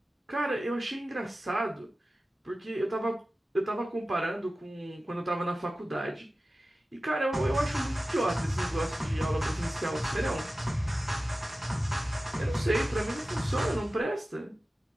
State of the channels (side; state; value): both; normal; correlation 0.95